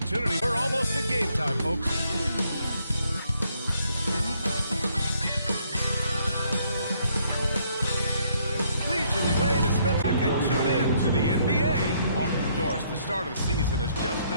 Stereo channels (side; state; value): both; inverted; correlation -0.69